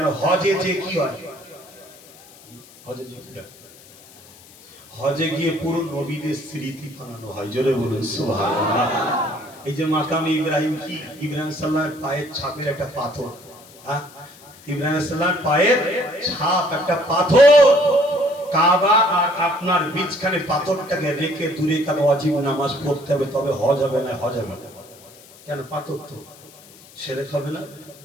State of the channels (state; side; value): noise; left; hiss, 23 dB below the sound